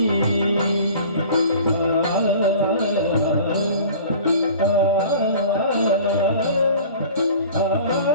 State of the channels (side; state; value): both; inverted; correlation -0.44